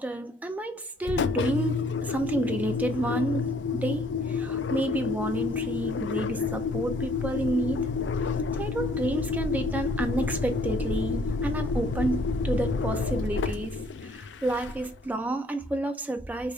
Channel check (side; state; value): both; normal; correlation 0.62